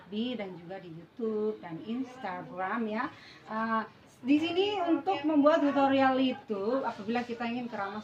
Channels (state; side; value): identical; both; correlation 1.00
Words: dan juga di YouTube dan Instagram ya. Di sini untuk membuat tutorial itu, apabila kita ingin